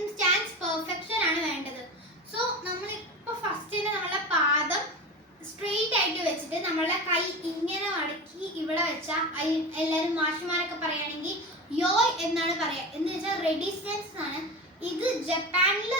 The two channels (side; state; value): both; normal; correlation 0.26